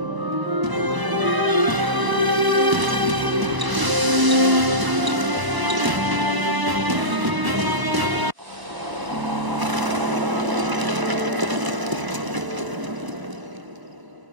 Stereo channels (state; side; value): late; left; 1.0 ms